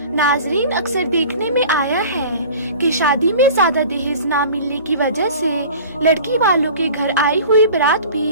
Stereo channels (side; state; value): both; inverted; correlation -0.42